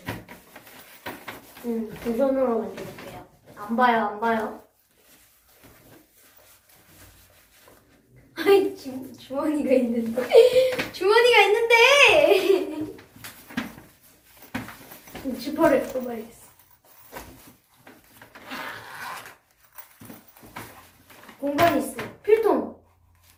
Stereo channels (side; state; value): both; identical; correlation 1.00